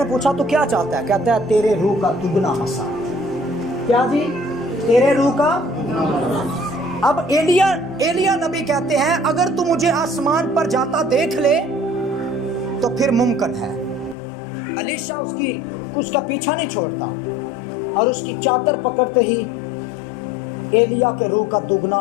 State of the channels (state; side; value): drops out; right; at 14.2 s